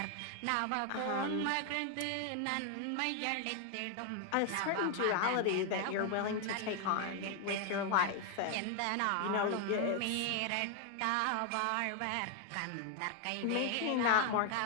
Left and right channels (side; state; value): both; different; correlation 0.00